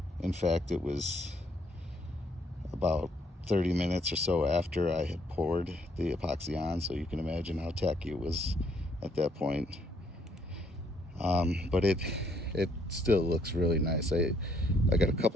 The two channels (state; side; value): normal; both; correlation 0.69